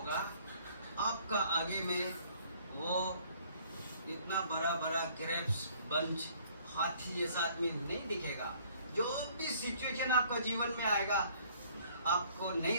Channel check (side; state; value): both; inverted; correlation -0.59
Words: आपका आगे में, वो इतना बड़ा बड़ा ग्रेप्स बंच हाथी जैसा आदमी नहीं दिखेगा। जो भी सिचुएशन आपका जीवन में आएगा, आपको